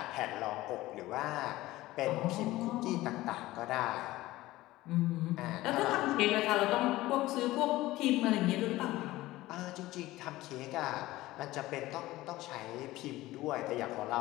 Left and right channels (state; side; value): quieter; right; 17.4 dB